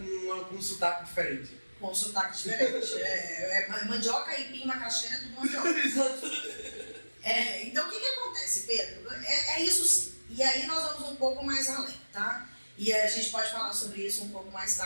um sotaque diferente. Com um sotaque diferente. Mandioca, aipim, macaxeira, é tudo mandioca. Então o que acontece, Pedro? É isso sim. E aí nós vamos um pouco mais além, tá? E a gente pode falar sobre isso um pouco mais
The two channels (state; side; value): inverted; both; correlation -1.00